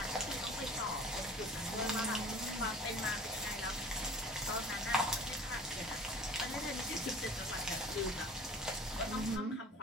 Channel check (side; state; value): both; normal; correlation 0.44